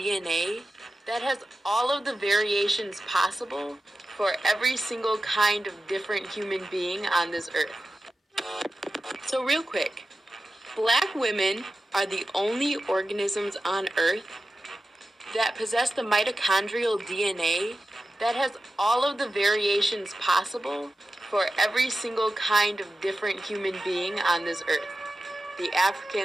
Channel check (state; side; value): normal; both; correlation 0.92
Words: that has all of the variations possible for every single kind of different human being on this Earth. So real quick, Black women are the only organisms on Earth that possess the mitochondrial DNA that has all of the variations possible for every single kind of different human being on this Earth. The